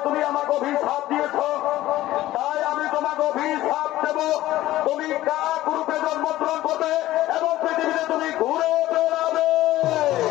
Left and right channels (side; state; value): right; quieter; 15.4 dB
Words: তুমি আমাকে অভিশাপ দিয়েছ, তাই আমি তোমাকে অভিশাপ দেব। তুমি কাক রূপে জন্মগ্রহণ করবে এবং পৃথিবীতে তুমি ঘুরে বেড়াবে।